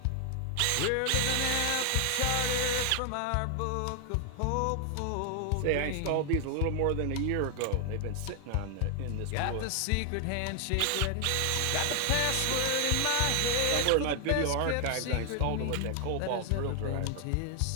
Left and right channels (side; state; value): both; different; correlation 0.00